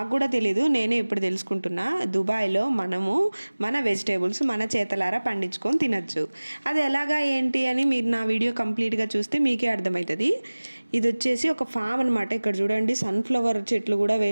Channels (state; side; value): inverted; both; correlation -1.00